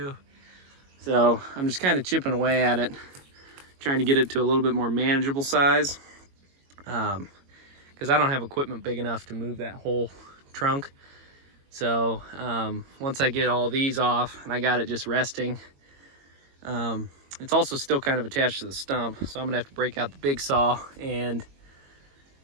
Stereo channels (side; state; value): left; late; 22 ms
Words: So I'm just kind of chipping away at it, trying to get it to a little bit more manageable size. Because I don't have equipment big enough to move that whole trunk. So once I get all these off and I got it just resting, it's also still kind of attached to the stump. So I'm gonna have to break out the big saw and